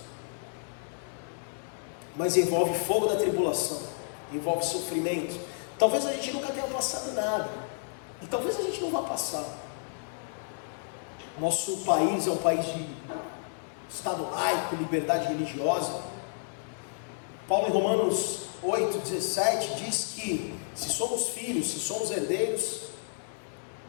mas envolve fogo da tribulação, envolve sofrimento. Talvez a gente nunca tenha passado nada, e talvez a gente não vá passar. Nosso país é um país de Estado laico, liberdade religiosa. Paulo em Romanos 8,17 diz que se somos filhos, se somos herdeiros,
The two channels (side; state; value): right; silent; digital silence